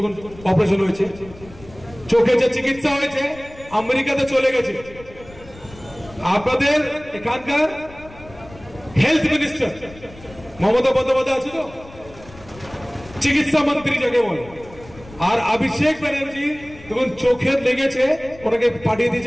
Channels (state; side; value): noise; left; rumble, 20 dB below the sound